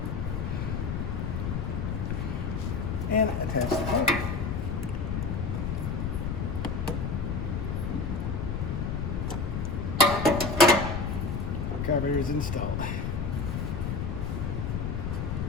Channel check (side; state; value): left; noise; rumble, 1 dB below the sound